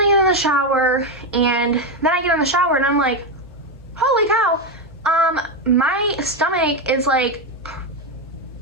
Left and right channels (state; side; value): normal; both; correlation 0.09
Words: get in the shower, and then I get in the shower and I'm like, holy cow, my stomach is like